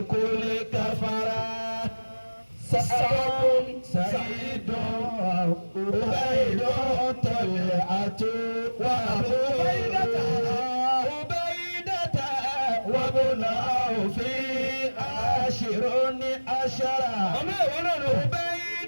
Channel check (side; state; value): both; inverted; correlation -1.00